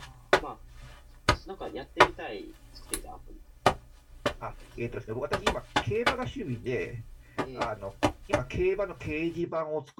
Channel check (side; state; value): both; identical; correlation 1.00